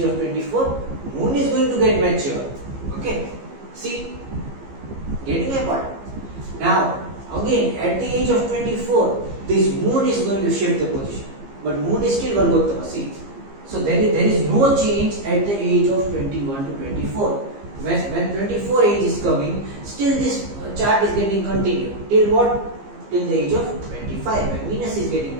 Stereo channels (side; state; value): left; late; 15 ms